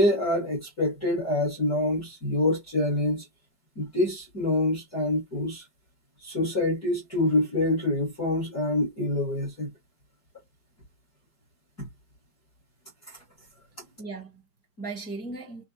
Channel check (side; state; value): right; late; 4.8 ms